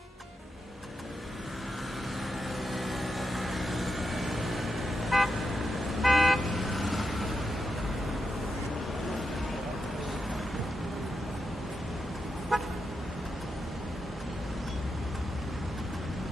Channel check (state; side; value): normal; both; correlation 0.86